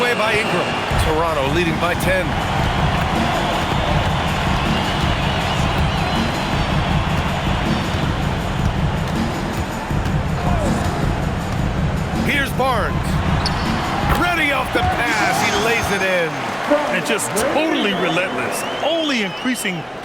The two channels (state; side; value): identical; both; correlation 1.00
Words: by Ingram. Toronto leading by 10. Here's Barnes. Ready off the pass. He lays it in. And just totally relentless. Only increasing